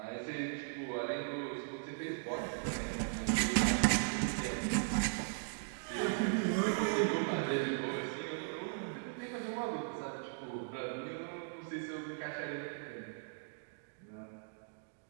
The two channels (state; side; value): silent; left; digital silence